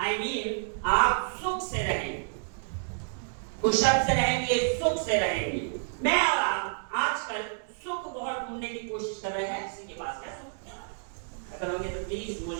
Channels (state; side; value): silent; left; digital silence